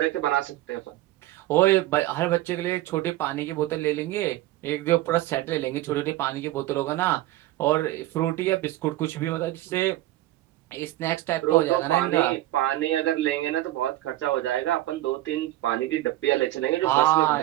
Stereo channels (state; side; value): quieter; left; 15.6 dB